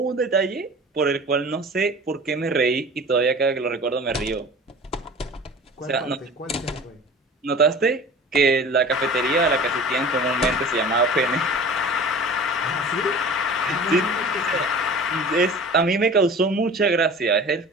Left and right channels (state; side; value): normal; both; correlation 0.41